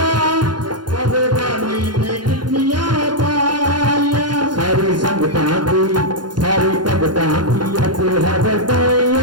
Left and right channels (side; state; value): left; late; 0.71 ms